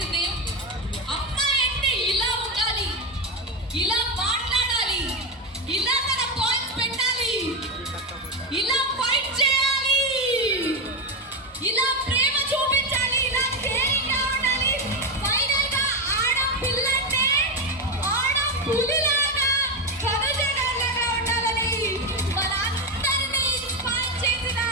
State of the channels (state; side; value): normal; both; correlation 0.10